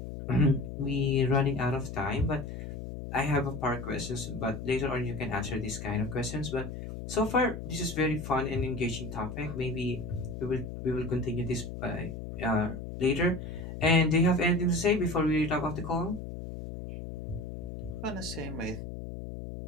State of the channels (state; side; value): noise; left; hum, 8 dB below the sound